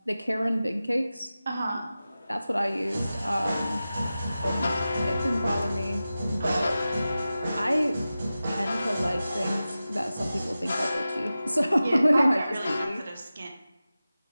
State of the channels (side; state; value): both; inverted; correlation -0.95